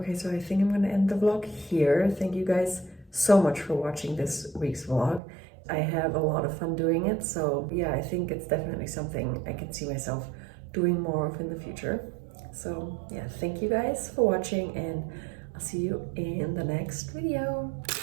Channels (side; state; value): left; drops out; at 5.2 s